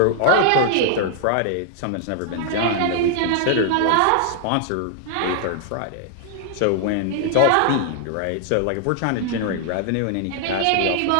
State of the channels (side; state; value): both; different; correlation 0.00